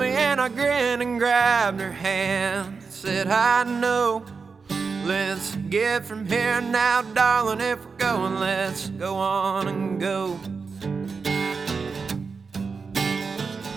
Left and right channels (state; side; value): quieter; left; 5.0 dB